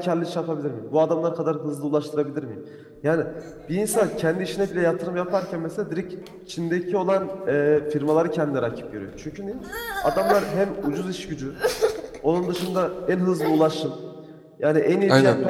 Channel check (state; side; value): identical; both; correlation 1.00